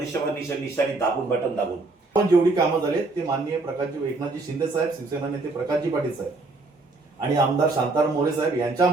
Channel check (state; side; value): quieter; left; 3.4 dB